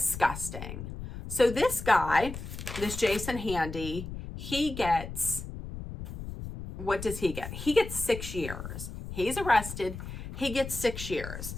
So this guy, this Jason Handy, he gets, what does he get? He gets 6 years. He's arrested. He gets 6 years.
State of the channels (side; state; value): left; noise; rumble, 9 dB below the sound